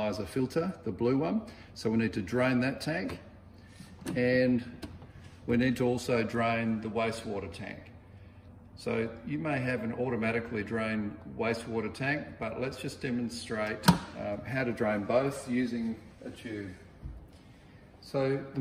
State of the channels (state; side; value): identical; both; correlation 1.00